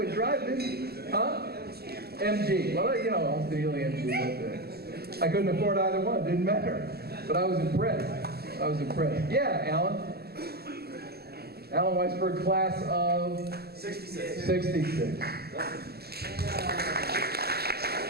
drive this, huh? MG. Well, Austin Healey, MG. I couldn't afford either one. It didn't matter. But I was impressed. Yeah, Alan. Alan Weisberg, class of 66.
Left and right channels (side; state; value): left; late; 0.46 ms